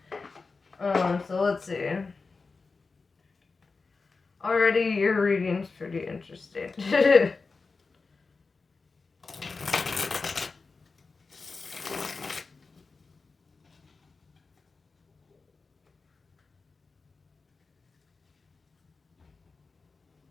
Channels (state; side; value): quieter; right; 4.2 dB